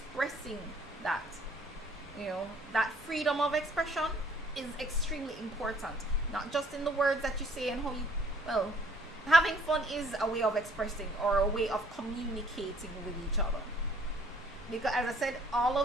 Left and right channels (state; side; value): normal; both; correlation 0.60